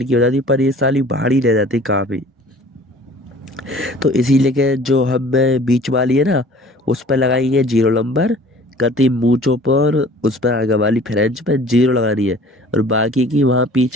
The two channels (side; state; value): both; normal; correlation 0.49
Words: हो जाती है, पर ये साली भारी रह जाती है काफ़ी। तो इसीलिए के जो हमें बीच वाली है ना, उस पर लगाएंगे 0 नंबर, कति मूंछों पर उस पर आगे वाली फ्रेंच पे 0 लगानी है, और बाकी की वहाँ